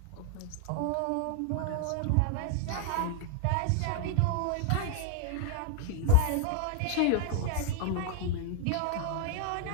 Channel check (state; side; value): different; both; correlation 0.00